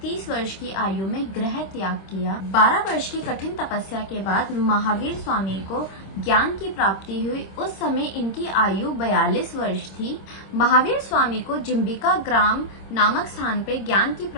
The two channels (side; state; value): right; late; 26 ms